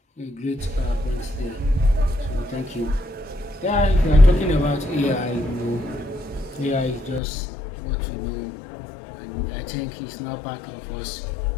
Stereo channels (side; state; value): right; drops out; at 7.2 s